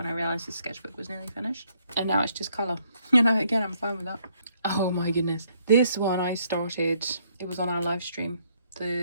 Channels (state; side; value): inverted; both; correlation -0.69